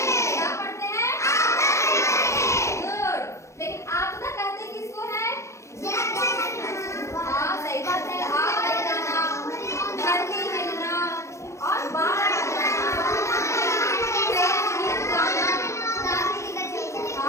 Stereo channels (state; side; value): late; right; 0.14 ms